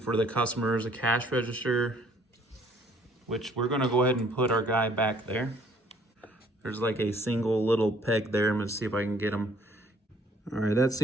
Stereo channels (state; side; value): normal; both; correlation 0.60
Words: the customers, a cash register, which we're gonna go ahead and put our guy back there. There's like a single little peg there. I'm gonna see if I can get him. All right, that